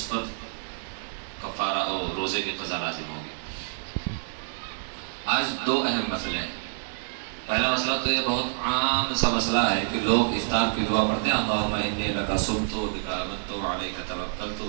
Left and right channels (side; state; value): left; silent; 57 dB below the other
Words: پر کفارہ اور روزے کی قضا لازم ہوگی۔ آج 2 اہم مسئلے ہیں۔ پہلا مسئلہ تو یہ بہت عام سا مسئلہ ہے کہ لوگ افطار کی دعا پڑھتے ہیں، اللہم انی لک صمت بک آمنت علیک توکلت